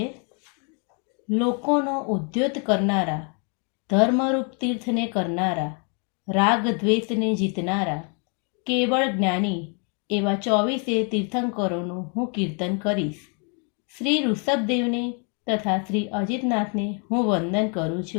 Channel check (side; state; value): right; quieter; 38.1 dB